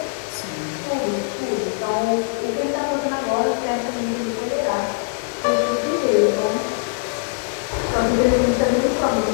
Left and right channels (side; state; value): right; silent; digital silence